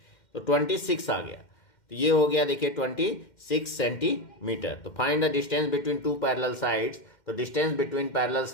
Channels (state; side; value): late; right; 2.1 ms